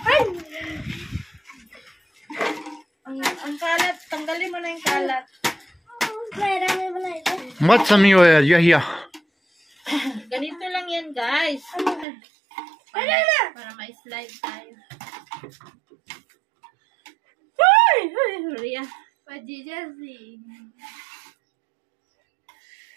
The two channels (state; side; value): drops out; left; at 12.1 s